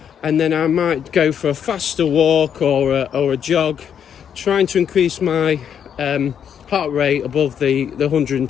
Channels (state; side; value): quieter; right; 8.4 dB